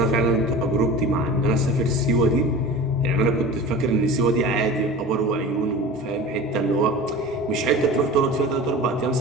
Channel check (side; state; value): both; normal; correlation 0.35